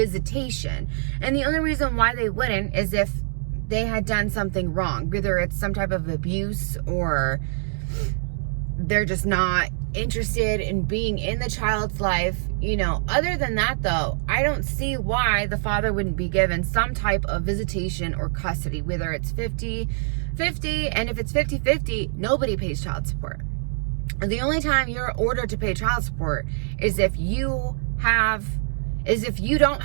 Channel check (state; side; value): silent; left; digital silence